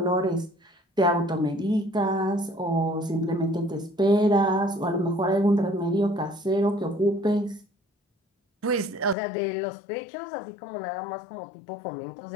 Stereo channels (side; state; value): right; drops out; at 9.2 s